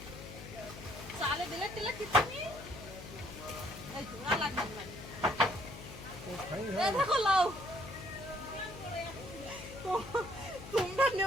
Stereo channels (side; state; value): left; noise; hum, 13 dB below the sound